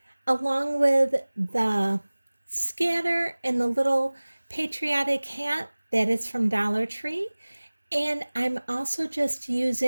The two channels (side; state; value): both; inverted; correlation -1.00